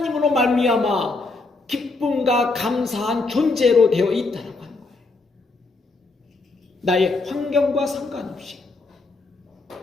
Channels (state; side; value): quieter; right; 3.6 dB